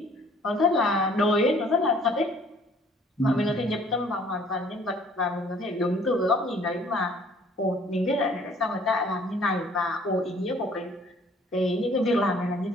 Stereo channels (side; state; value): both; normal; correlation 0.57